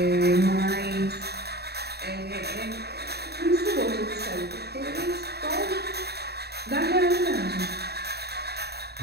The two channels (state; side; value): late; left; 0.47 ms